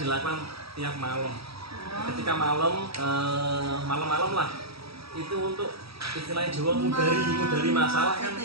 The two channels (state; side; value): late; left; 0.77 ms